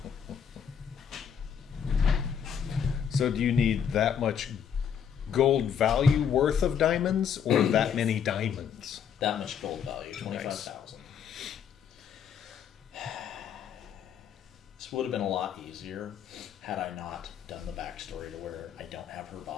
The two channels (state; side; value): quieter; right; 7.8 dB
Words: So do you need that much gold value worth of diamonds, or that many diamonds? That much gold value, 25,000. This would have been a lot easier had I not done the backstory to where I don't have her